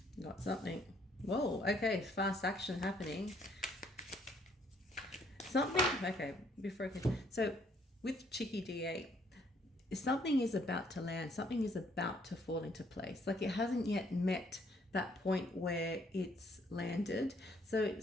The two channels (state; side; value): normal; both; correlation 0.66